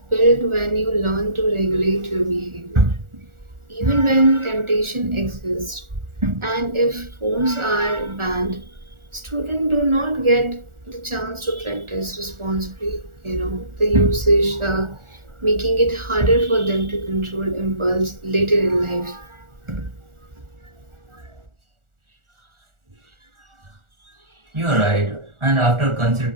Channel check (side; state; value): left; late; 1.4 ms